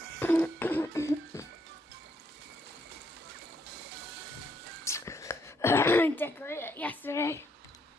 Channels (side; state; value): both; normal; correlation 0.73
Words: I decorated it yesterday.